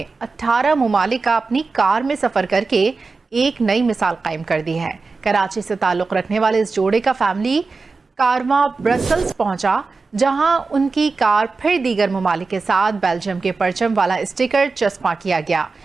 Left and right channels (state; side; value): quieter; left; 4.2 dB